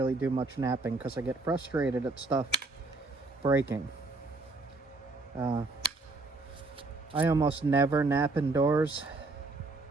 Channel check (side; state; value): left; quieter; 3.4 dB